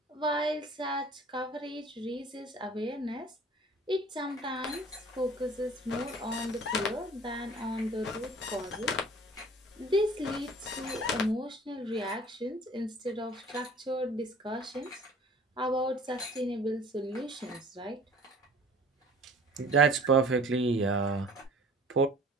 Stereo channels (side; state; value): both; normal; correlation 0.48